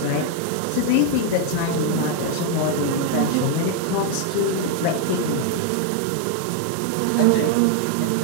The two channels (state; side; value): different; both; correlation 0.00